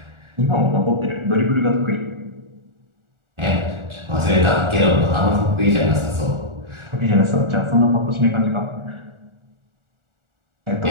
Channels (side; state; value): left; late; 1.4 ms